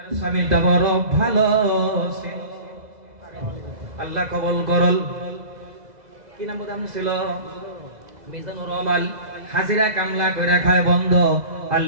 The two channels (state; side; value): late; left; 2.0 ms